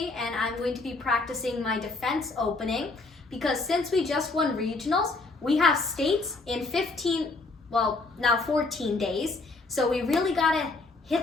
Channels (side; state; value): right; quieter; 3.4 dB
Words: and I'm going to be practicing my defense opening because since we just won regionals, we have states in 14 days. So we really gotta